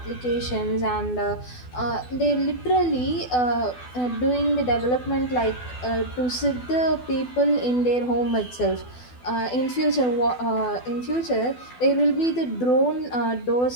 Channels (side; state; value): right; late; 12 ms